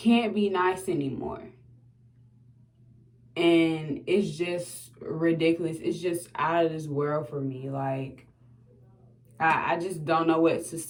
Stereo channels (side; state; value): both; identical; correlation 1.00